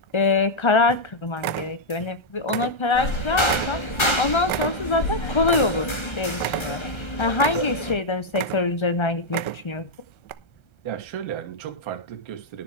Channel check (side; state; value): right; late; 1.3 ms